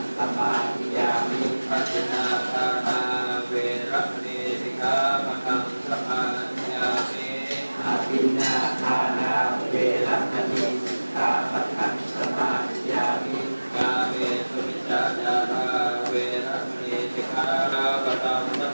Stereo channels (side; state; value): both; inverted; correlation -1.00